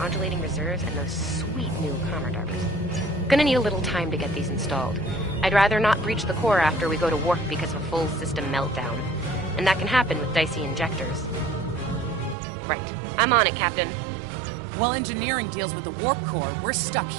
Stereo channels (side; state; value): left; drops out; at 12.4 s